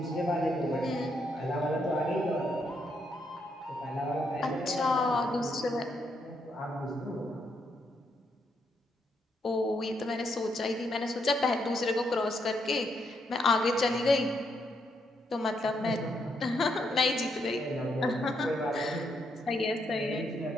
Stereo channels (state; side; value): normal; both; correlation 0.77